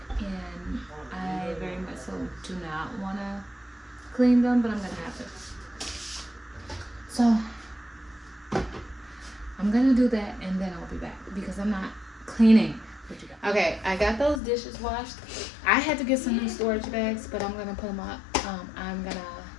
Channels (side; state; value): right; drops out; at 14.4 s